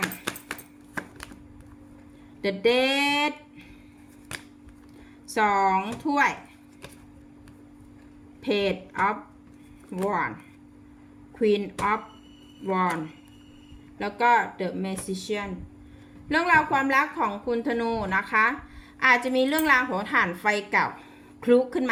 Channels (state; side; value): identical; both; correlation 1.00